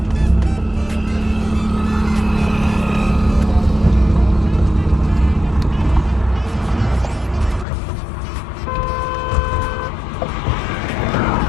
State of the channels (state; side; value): drops out; right; at 7.7 s